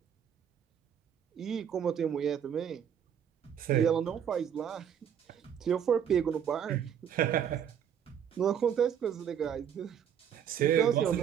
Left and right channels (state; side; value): quieter; left; 8.6 dB